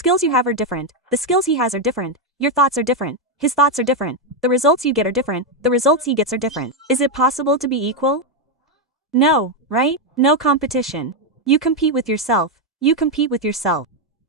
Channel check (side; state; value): both; normal; correlation 0.03